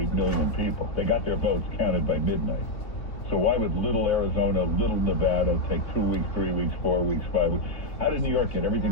million people. They got their votes counted by midnight. So why would little Arizona, little Nevada take 2 weeks, 3 weeks, 4 weeks, 5 weeks? How did New York get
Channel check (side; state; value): right; late; 2.8 ms